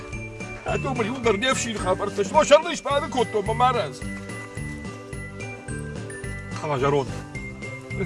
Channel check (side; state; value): both; identical; correlation 1.00